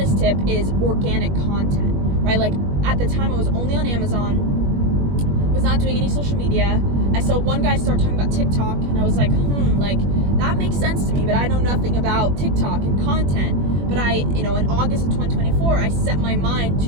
tip is organic content, right? Like, at the time I was only on Amazon, was not doing any social media. I saw one guy start talking about TikTok, and I was like, like, that makes sense to me, but I know nothing about TikTok and content. But in August of 2024, I set my mind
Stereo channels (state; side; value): late; left; 21 ms